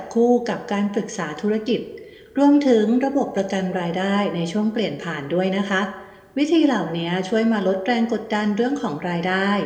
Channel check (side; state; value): both; identical; correlation 1.00